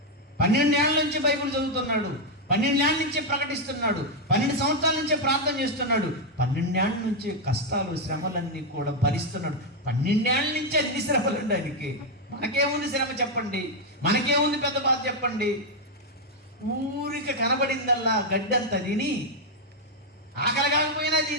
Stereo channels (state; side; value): normal; both; correlation 0.02